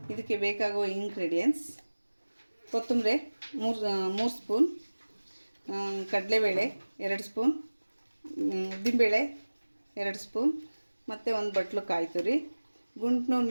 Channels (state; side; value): inverted; both; correlation -1.00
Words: ಇದಕ್ಕೆ ಬೇಕಾಗುವ ಇಂಗ್ರೀಡಿಯೆಂಟ್ಸ್: ಕೊತ್ತಂಬರಿ 3 ಸ್ಪೂನ್, ಕಡಲೆಬೇಳೆ 2 ಸ್ಪೂನ್, ಉದ್ದಿನಬೇಳೆ 2 ಸ್ಪೂನ್, ಮತ್ತು ಒಂದು ಬಟ್ಲು ಕಾಯಿ ತುರಿ, ಗುಂಟ್ನೂರು